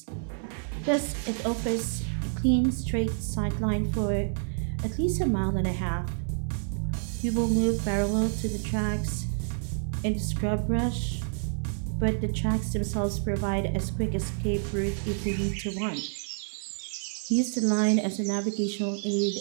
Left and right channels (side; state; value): left; silent; 59 dB below the other